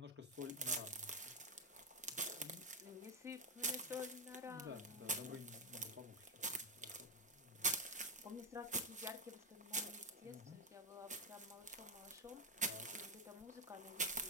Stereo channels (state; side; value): normal; both; correlation 0.07